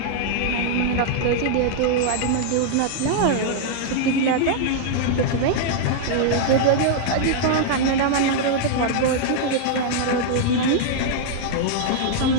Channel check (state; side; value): different; both; correlation -0.01